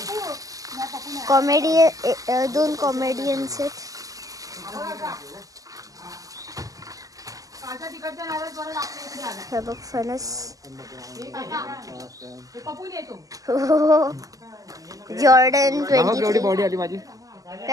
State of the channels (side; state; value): left; late; 0.17 ms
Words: कॉमेडी 2 कॉमेडियन्स आहेत. हे बघ फणस. जॉर्डन 23. बॉडी आली माझी.